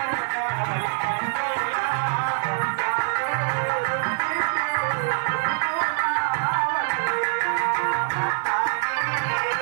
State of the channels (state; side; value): silent; left; digital silence